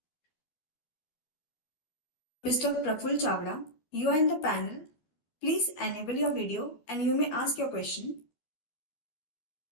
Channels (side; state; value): right; late; 13 ms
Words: Mr. Praful Chavda. You are in the panel. Please enable your video and you may ask your question.